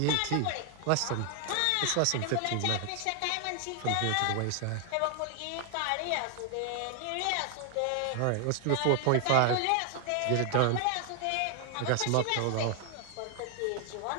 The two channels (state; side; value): different; both; correlation 0.00